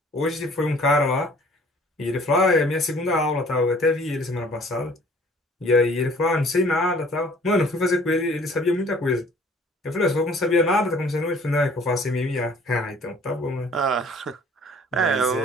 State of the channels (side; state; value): both; normal; correlation 0.54